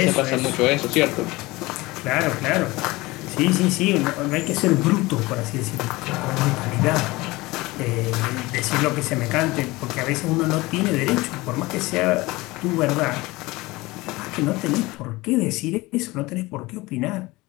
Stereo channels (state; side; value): quieter; right; 21.2 dB